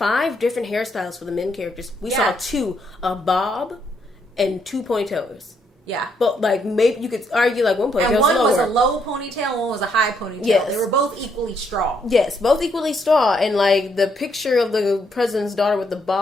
hairstyles for the men characters. We saw 2, a bob and 2 ponytails. Yeah. But, like, maybe you could argue, like, one ponytail and one was a low ponytail, one was a high ponytail. Yes. They were both equally straw. Yes, both equally straw. And, like, the picture of the president's daughter with the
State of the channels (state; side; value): normal; both; correlation 0.74